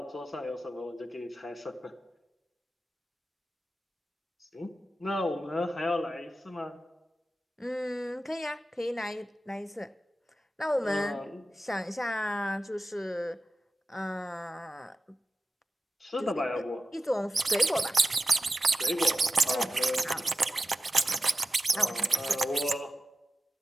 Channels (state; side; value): normal; both; correlation 0.94